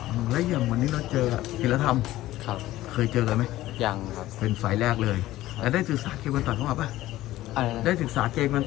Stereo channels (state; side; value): quieter; right; 15.7 dB